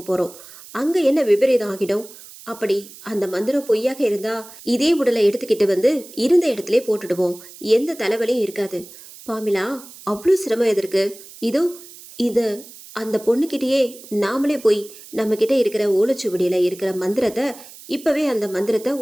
போறோம். அங்க என்ன விபரீதம் ஆகிடும்? அப்படி அந்த மந்திரம் பொய்யாக இருந்தா இதே உடலை எடுத்துக்கிட்டு வந்து இருந்த இடத்துல போட்டுடுவோம். எந்த தலைவலியும் இருக்காது. பாமிலா, அவ்வளோ சிரமம் எதற்கு? இதோ இது அந்த பொண்ணுக்கிட்டேயே நாமளே போய் நம்ம கிட்ட இருக்கிற ஓலைச்சுவடியில இருக்கிற மந்திரத்தை இப்பவே அந்த மந்திரத்தை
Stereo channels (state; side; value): noise; right; hiss, 18 dB below the sound